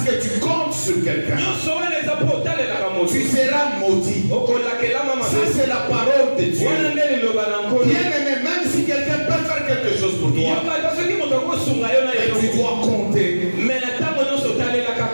que tu comptes sur quelqu'un, tu seras maudit. Ça, c'est la parole de Dieu. Bien aimé, même si quelqu'un peut faire quelque chose pour toi, mais tu dois compter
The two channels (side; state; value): both; inverted; correlation -1.00